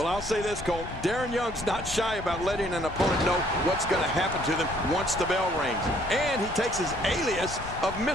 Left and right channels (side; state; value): left; noise; rumble, 11 dB below the sound